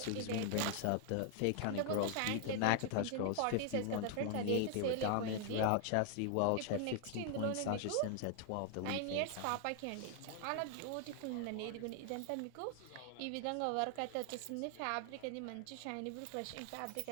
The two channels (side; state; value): both; different; correlation 0.00